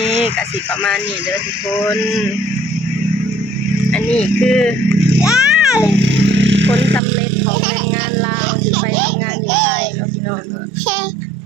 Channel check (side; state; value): left; drops out; at 7.0 s